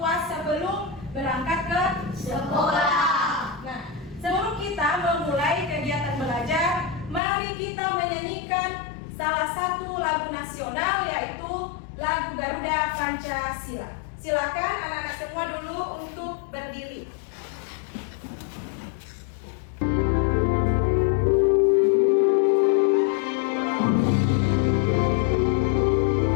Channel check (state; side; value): drops out; right; at 7.2 s